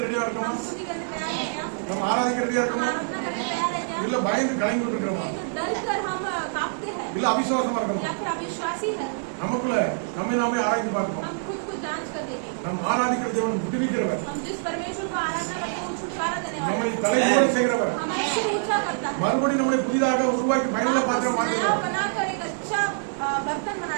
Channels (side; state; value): left; silent; digital silence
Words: ரெடியா இருக்கோமா? हम स्तुति करने तैयार हैं क्या? நம்ம ஆராதிக்க ரெடியா हम இருக்கோமா? आराधना करने तैयार हैं क्या? இல்ல பயந்து கலங்கி இருக்கிறோமா? नहीं तो डर कर हम कांपते हैं இல்ல அவிசுவாசமா இருக்கோமா? या फिर अविश्वासी है। நமக்குள்ள நம்மை நாமே ஆராய்ந்து பார்ப்போம். हम खुद को जांच कर देंगे। நம் ஆராதிக்கிற தேவன் விடுவிக்கிறவர், हम जिस परमेश्वर को आराधना करते हैं वो छुटकारा देने वाला நம்மை है। தலைமுறை செய்கிறவர், हमारे सिर ऊंचा करता है। மறுபடியும் நம்மளை புதிதாக உருவாக்கி பயனுள்ள பாத்திரம் नया மாற்றுகிறார். बनाकर एक अच्छा बर्तन